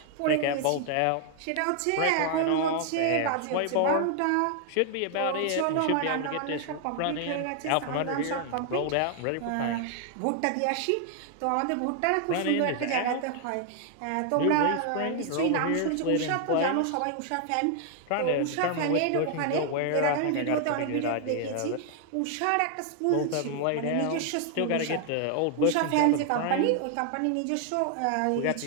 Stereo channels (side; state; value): both; different; correlation 0.00